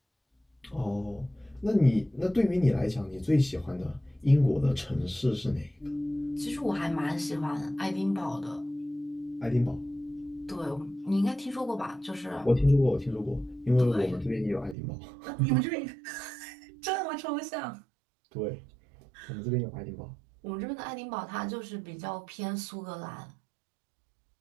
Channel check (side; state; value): left; drops out; at 14.8 s